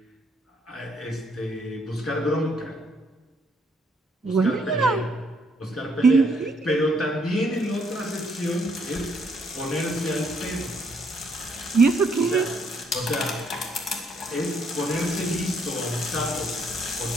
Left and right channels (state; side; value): normal; both; correlation 0.70